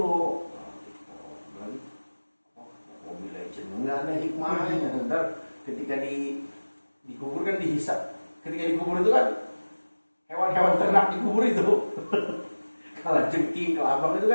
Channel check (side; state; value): both; inverted; correlation -1.00